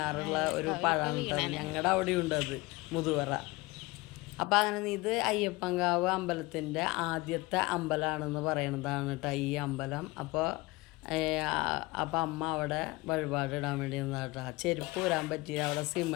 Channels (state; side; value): quieter; right; 22.4 dB